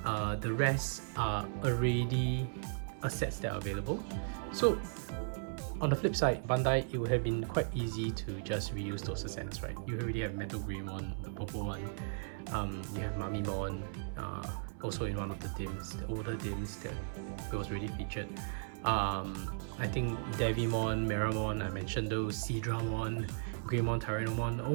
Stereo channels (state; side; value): silent; left; 54 dB below the other